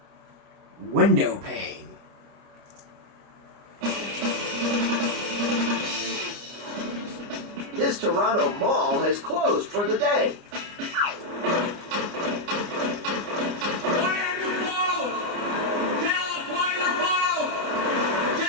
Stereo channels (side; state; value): left; late; 29 ms